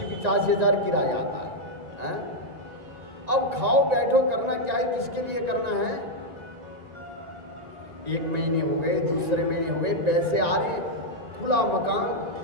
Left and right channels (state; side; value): late; left; 1.9 ms